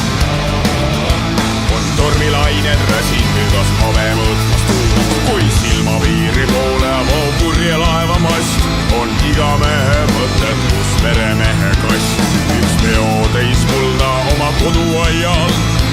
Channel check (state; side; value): identical; both; correlation 1.00